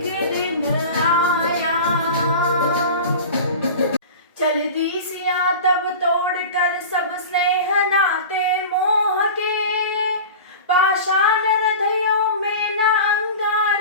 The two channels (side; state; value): both; inverted; correlation -0.34